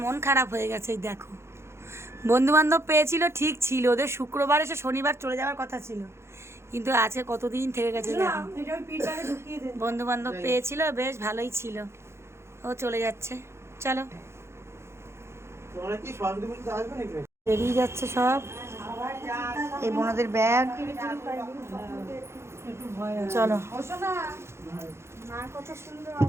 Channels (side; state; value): left; late; 0.13 ms